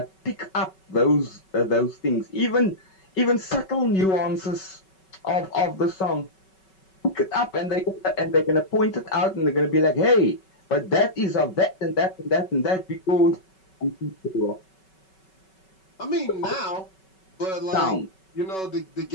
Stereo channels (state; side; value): late; right; 5.3 ms